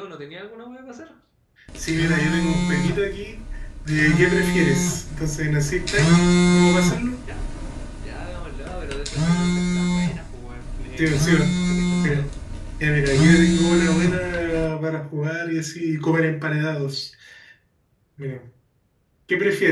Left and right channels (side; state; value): both; identical; correlation 1.00